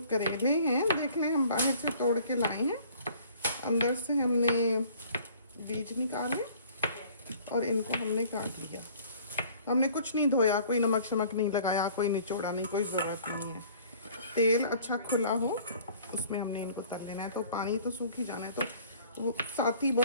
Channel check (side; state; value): both; inverted; correlation -0.53